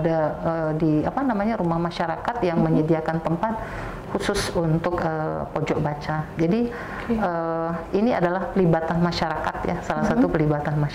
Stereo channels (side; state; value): both; identical; correlation 1.00